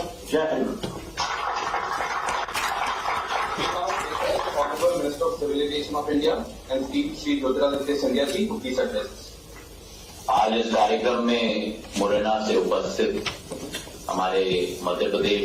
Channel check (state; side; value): identical; both; correlation 1.00